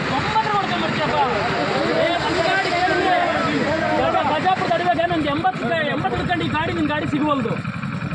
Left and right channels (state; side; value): identical; both; correlation 1.00